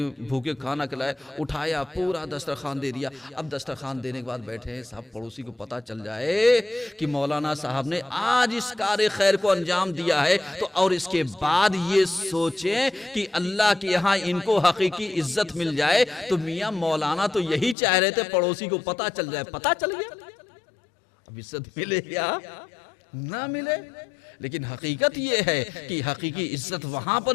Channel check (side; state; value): right; drops out; at 17.8 s